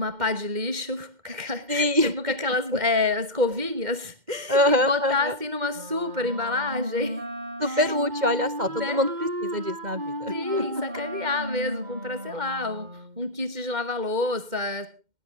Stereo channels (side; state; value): left; late; 2.1 ms